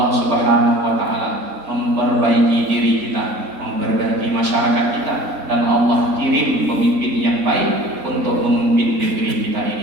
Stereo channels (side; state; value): left; late; 3.9 ms